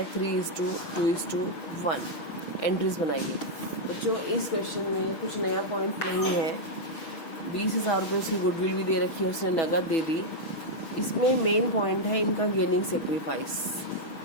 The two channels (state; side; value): late; right; 6.5 ms